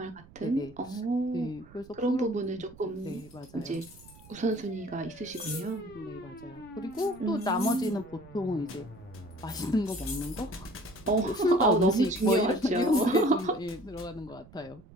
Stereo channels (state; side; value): noise; right; rumble, 22 dB below the sound